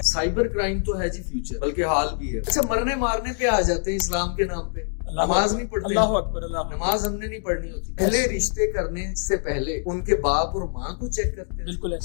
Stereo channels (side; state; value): right; silent; digital silence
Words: साइबर क्राइम तो है जी फ्यूचर, बल्कि हाल भी है। अच्छा, मरने मारने पे आ जाते हैं इस्लाम के नाम पे। नमाज नहीं पढ़ते, अल्लाह अकबर, अल्लाह अकबर। नमाज हमने नहीं पढ़नी होती। पहले रिश्ते करने से पहले उनके बाप और माँ को चेक करते हैं। बिल्कुल